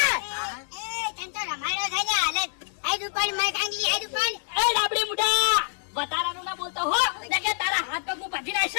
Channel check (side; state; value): right; silent; digital silence